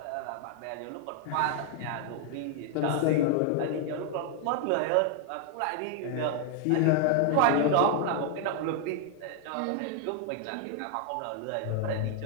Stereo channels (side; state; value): both; different; correlation 0.00